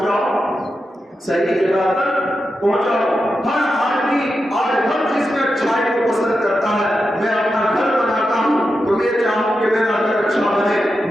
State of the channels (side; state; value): both; normal; correlation 0.89